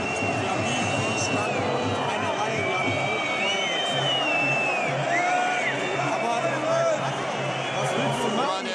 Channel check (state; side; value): identical; both; correlation 1.00